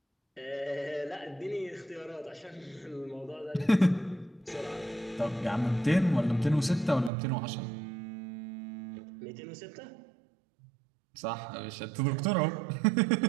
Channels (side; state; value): left; drops out; at 7.1 s